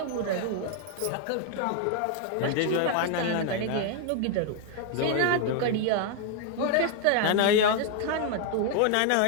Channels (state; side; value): different; both; correlation 0.00